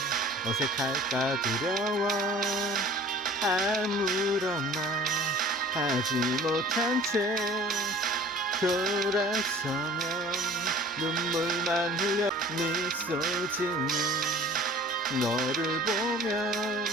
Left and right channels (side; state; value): both; normal; correlation 0.46